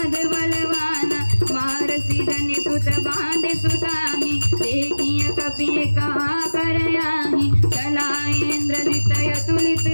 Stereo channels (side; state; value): both; inverted; correlation -1.00